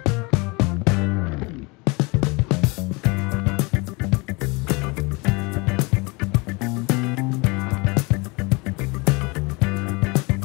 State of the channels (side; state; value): right; quieter; 27.3 dB